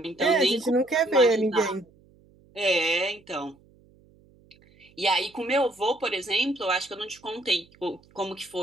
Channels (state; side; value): noise; right; hum, 30 dB below the sound